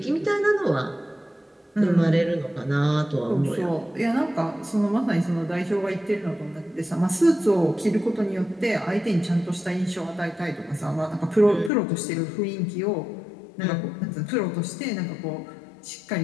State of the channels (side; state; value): right; drops out; at 11.7 s